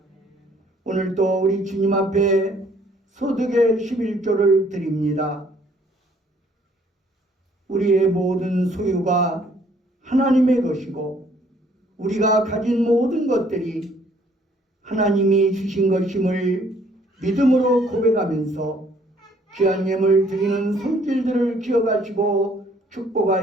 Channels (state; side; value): normal; both; correlation 0.62